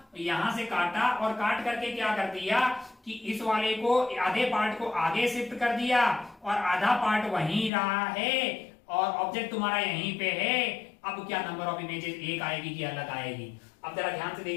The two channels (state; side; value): drops out; right; at 7.7 s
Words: और काट करके क्या कर दिया कि इस वाले को, आधे पार्ट को आगे शिफ्ट कर दिया, और आधा पार्ट वहीं रहा है, और ऑब्जेक्ट तुम्हारा यहीं पे है। अब क्या नंबर ऑफ इमेजेस एक आएगी कि अलग आएगी? अब जरा ध्यान से